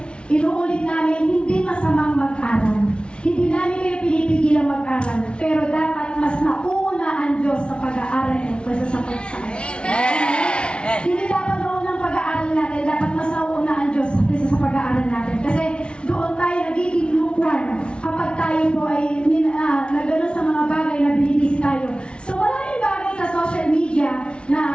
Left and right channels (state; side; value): late; right; 0.057 ms